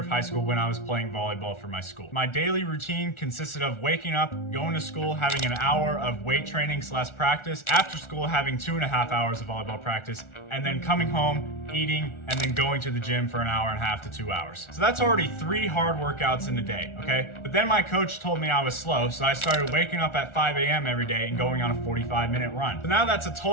high school when I was playing volleyball for my school. My daily routine consisted of waking up, going to school, having an hour of weight training / practice, after school having 2.5 hours of volleyball practice, and then coming home, eating, and then going to the gym for an hour and a half to 2 hours. So that's already 3 hard workouts in a day, okay? But then my coach told me I was slow, so I started waking up at 5 a.m. every day and going on a 45-minute run. So now that's a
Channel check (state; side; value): late; right; 1.4 ms